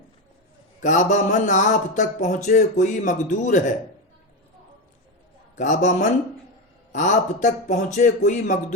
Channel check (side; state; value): both; normal; correlation 0.14